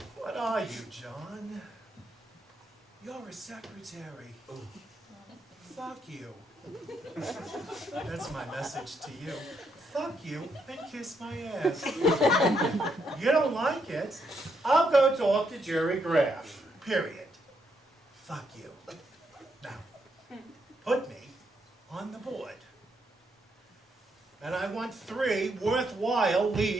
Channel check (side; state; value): both; normal; correlation 0.77